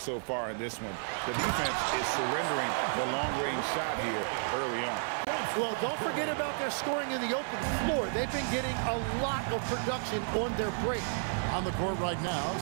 so far in this one. The defense is surrendering the long-range shot here early on. Well, don't forget about their scoring in the open floor. They've been getting a lot of production on their break. On the court right now,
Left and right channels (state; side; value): silent; left; 56 dB below the other